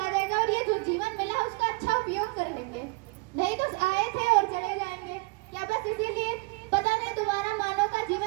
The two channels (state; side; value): quieter; left; 28.8 dB